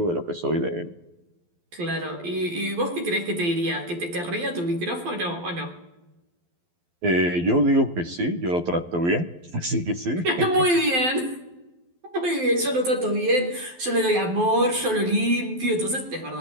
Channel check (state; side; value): late; left; 12 ms